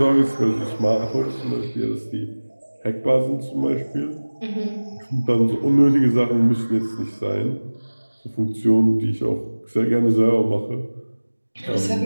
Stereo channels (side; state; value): both; inverted; correlation -1.00